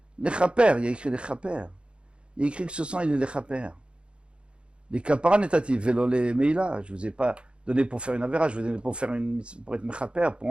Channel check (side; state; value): left; late; 0.056 ms